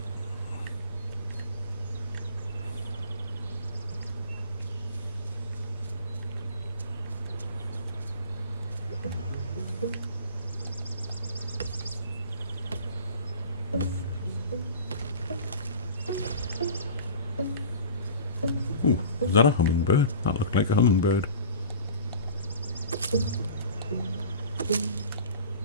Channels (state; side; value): inverted; both; correlation -0.41